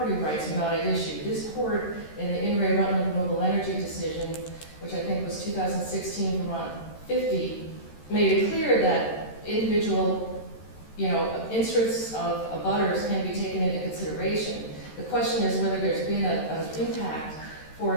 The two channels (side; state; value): right; late; 13 ms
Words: rights are not at issue. This court, in the In re Rutland Renewable Energy decision, which I think was 2016 Vermont 50, made it clear that individual, interests of abutters can be taken into consideration. The question is whether there's been an impact. For